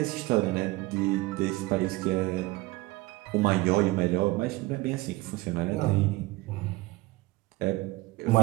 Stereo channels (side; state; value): left; quieter; 20.7 dB